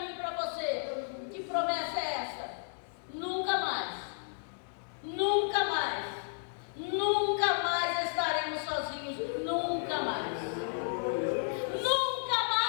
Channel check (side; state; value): right; silent; digital silence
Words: e para você. Que promessa é essa? Nunca mais, nunca mais, nunca mais estaremos sozinhos, nunca mais. Nunca